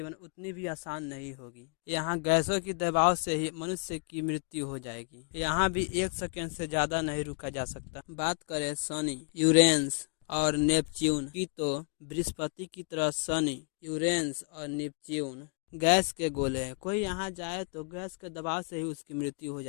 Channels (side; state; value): right; quieter; 39.6 dB